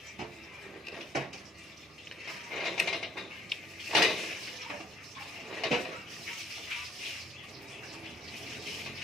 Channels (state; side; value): normal; both; correlation 0.63